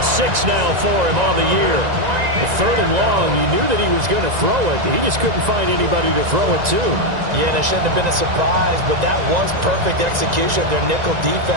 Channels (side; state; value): left; late; 1.9 ms